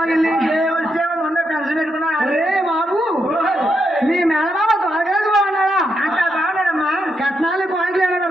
వెళ్ళి పెన్షన్ పెట్టుకున్నా అరే బాబు మీ మేనమామ త్వరగారు బాగున్నాడా అంత బాగున్నాడమ్మా కట్నాలు పాయింట్లు ఏమైనా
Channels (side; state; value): both; normal; correlation 0.81